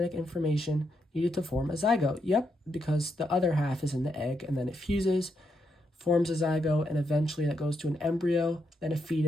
information needed to form a zygote. Yep, because the other half is in the egg, and then it fuses, forms a zygote, and eventually that goes to an embryo, then a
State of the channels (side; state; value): both; normal; correlation 0.80